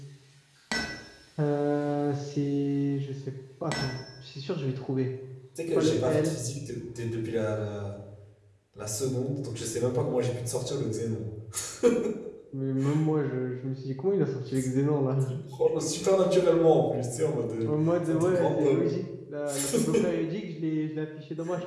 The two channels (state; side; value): identical; both; correlation 1.00